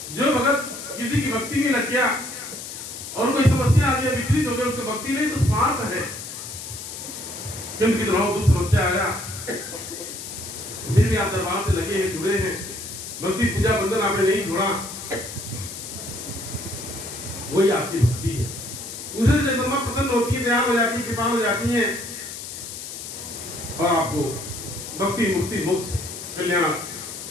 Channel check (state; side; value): noise; left; hiss, 9 dB below the sound